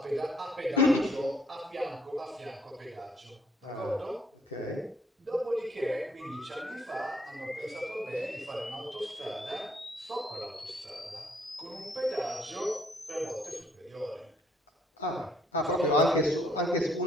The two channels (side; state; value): both; normal; correlation 0.65